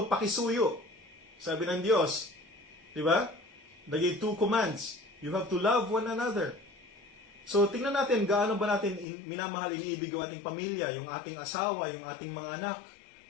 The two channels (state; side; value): drops out; right; at 9.1 s